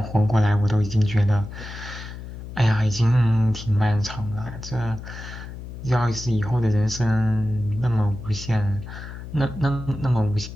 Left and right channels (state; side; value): noise; left; hum, 11 dB below the sound